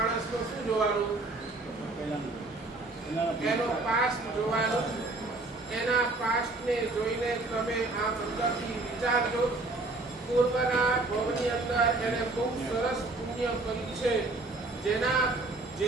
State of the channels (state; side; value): quieter; left; 3.1 dB